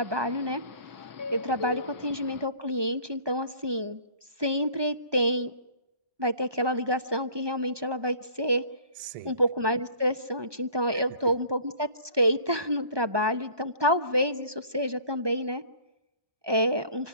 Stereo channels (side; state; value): left; late; 1.2 ms